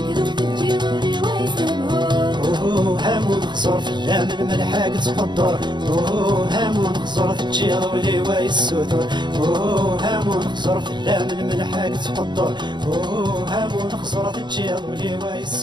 تجيض ولي ويسهبهو اوه هامون خسر في اللام الملحق تقدر اوه هامون خسر تجيض ولي ويسودر اوه هامون خسر في اللام الملحق تقدر اوه هامون خسر تجيض ولي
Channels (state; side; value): late; left; 0.22 ms